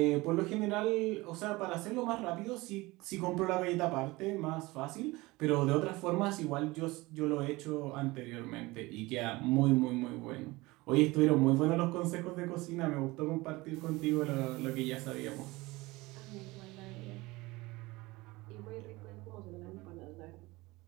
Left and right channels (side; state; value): left; quieter; 21.5 dB